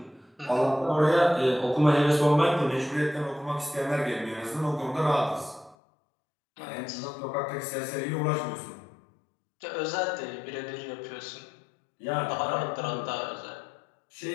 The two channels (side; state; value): right; drops out; at 5.8 s